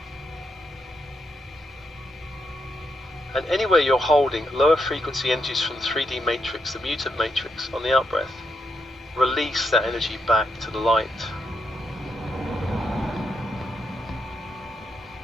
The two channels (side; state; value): both; normal; correlation 0.81